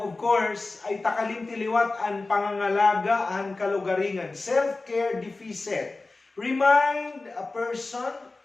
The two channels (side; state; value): right; quieter; 3.4 dB